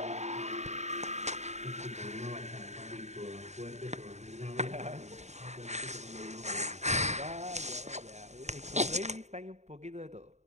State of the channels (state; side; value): late; left; 0.33 ms